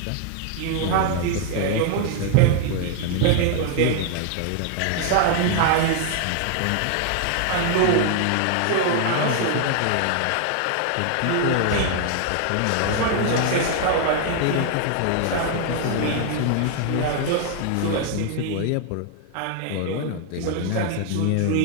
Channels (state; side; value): different; both; correlation 0.00